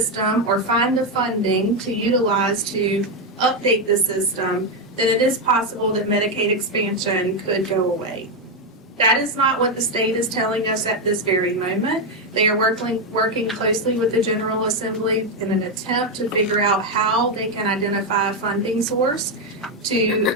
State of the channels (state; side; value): normal; both; correlation 0.05